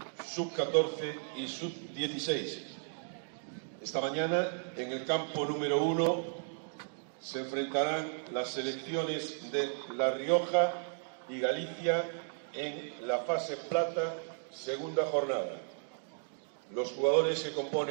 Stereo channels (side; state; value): left; silent; digital silence